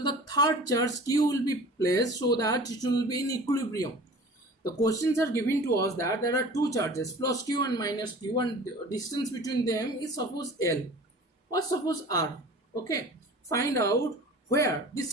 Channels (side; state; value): both; normal; correlation 0.42